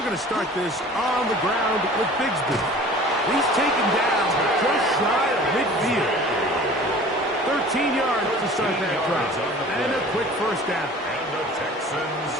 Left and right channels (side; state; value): both; normal; correlation 0.45